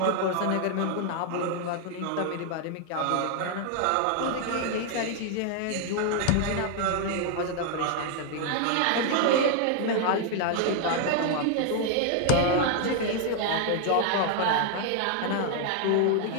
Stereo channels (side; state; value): both; different; correlation 0.00